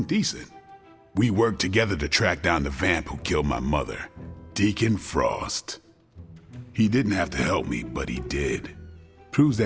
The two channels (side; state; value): both; identical; correlation 1.00